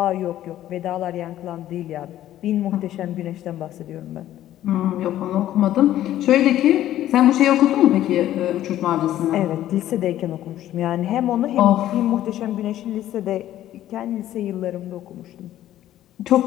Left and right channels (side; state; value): right; quieter; 12.9 dB